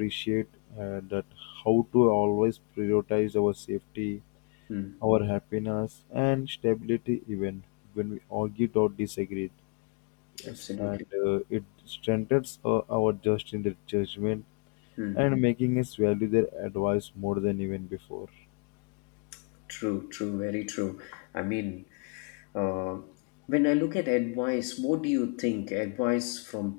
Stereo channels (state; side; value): quieter; right; 34.4 dB